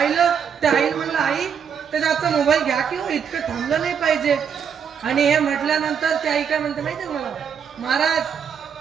त्या आईला म्हणलं आई त्याच्या हातचा मोबाईल घ्या किंवा इतकं थांबलं नाही पाहिजे. आणि हे म्हटल्यानंतर त्या आई काय म्हणते माहिती मला, महाराज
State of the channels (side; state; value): left; quieter; 7.4 dB